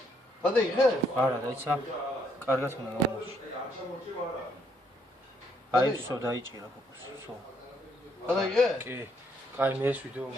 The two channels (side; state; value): both; normal; correlation 0.71